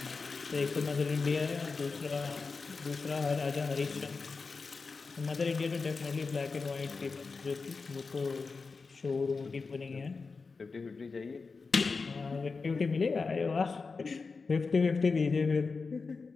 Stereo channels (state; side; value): quieter; right; 4.5 dB